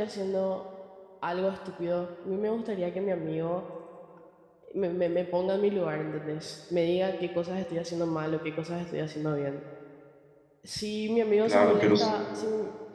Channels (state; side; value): identical; both; correlation 1.00